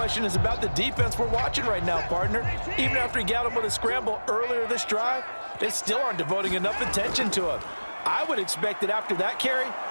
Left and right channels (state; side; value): inverted; both; correlation -1.00